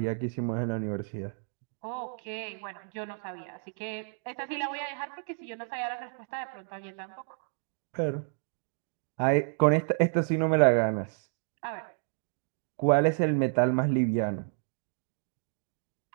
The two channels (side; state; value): left; silent; 57 dB below the other